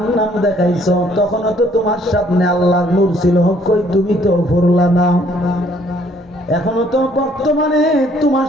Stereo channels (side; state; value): both; normal; correlation 0.63